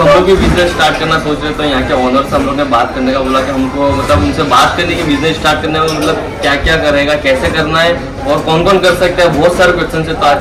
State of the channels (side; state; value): both; identical; correlation 1.00